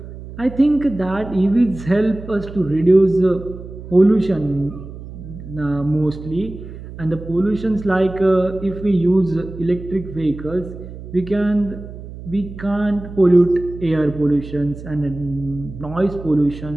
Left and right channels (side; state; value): right; noise; hum, 13 dB below the sound